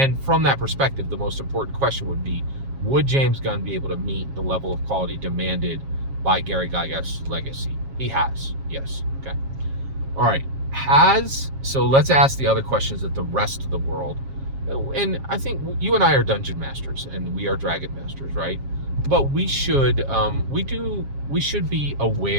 from that perspective, the most important question would be, would James Gunn be able to meet the level of quality demanded by Gary Gygax's legacy? He has, yes. Okay. All right. So let's ask the other questions that the rest of the world and I think you and I are dungeon masters and we are dragon masters, right? But we should we should be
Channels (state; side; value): late; left; 7.4 ms